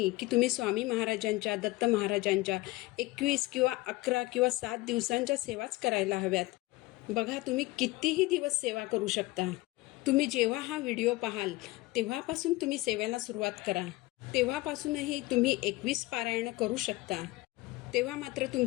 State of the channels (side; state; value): right; quieter; 20.2 dB